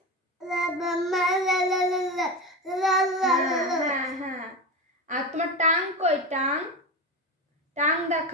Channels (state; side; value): normal; both; correlation 0.21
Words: হ্যাঁ হ্যাঁ। আর তোমার টাং কই? টাং টাং